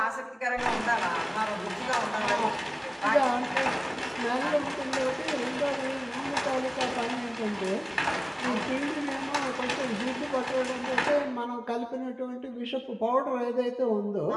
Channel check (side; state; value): both; identical; correlation 1.00